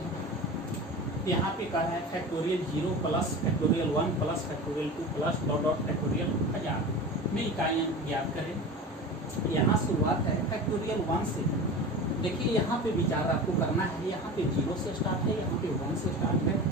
यहाँ पे कहा है factorial 0 plus factorial 1 plus factorial 2 plus dot dot factorial 1000 में इकाइयाँ ज्ञात करें। यहाँ शुरुआत है फैक्टोरियल 1 से। देखिए यहाँ पे विचार आपको करना है, यहाँ पे 0 से स्टार्ट है, यहाँ पे 1 से स्टार्ट है।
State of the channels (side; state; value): both; normal; correlation 0.32